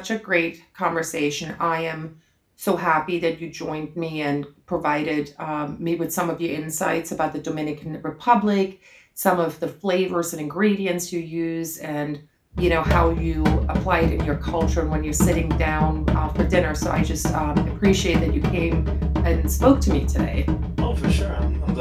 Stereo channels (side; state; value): both; identical; correlation 1.00